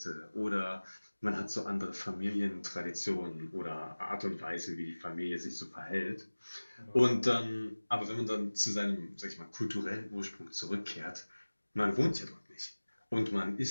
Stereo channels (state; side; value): inverted; both; correlation -1.00